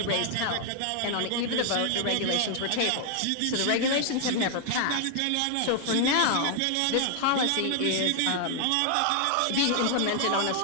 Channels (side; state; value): both; different; correlation 0.00